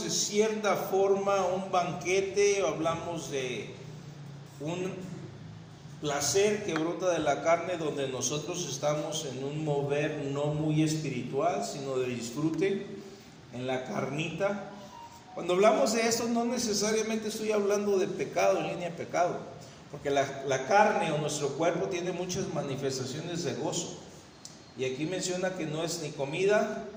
de cierta forma, un banquete, o hablamos de un placer que brota de la carne, donde nosotros estamos en un mover no muy espiritual, sino de disfrute en la carnita. Cuando hablamos de esto, no necesariamente estoy hablando de pecado, en línea de pecado, porque la carne o nuestro cuerpo tiene muchas manifestaciones de gozo. Y aquí menciona que no es ni comida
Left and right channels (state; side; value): identical; both; correlation 1.00